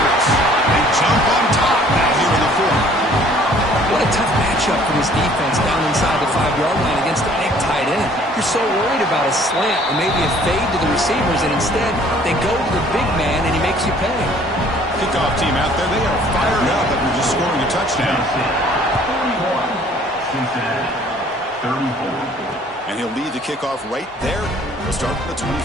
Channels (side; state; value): both; normal; correlation 0.56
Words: this defense down inside the 5-yard line against a big tight end. You're so worried about a slant or maybe a fade to the receivers, and instead they go to the big man and he makes you pay. Kickoff team out there, they are fired up after just scoring a touchdown. 41, Cincinnati, 34. And he'll lead the kickoff right there. We'll start from the